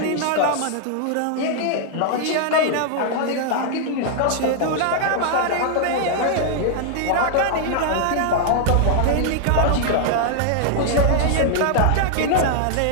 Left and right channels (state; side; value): different; both; correlation -0.01